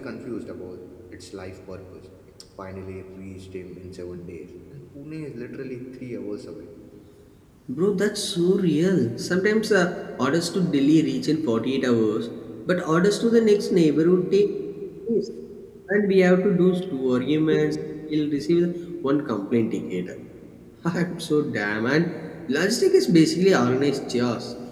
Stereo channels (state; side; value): identical; both; correlation 1.00